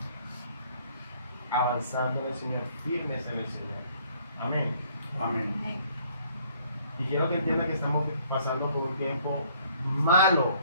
avanzando en el Señor, firmes en el Señor. Amén. Amén. Y quiero que entiendan que estamos pasando por un tiempo malo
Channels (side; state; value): both; inverted; correlation -0.62